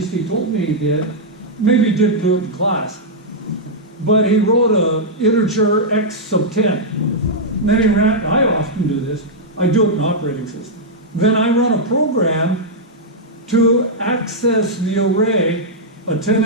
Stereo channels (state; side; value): normal; both; correlation -0.07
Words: he told me he did, maybe he didn't do it in class, but he wrote a integer x sub 10. And then he ran, I often do this, I do it in operating system. Then I run a program to access the array, a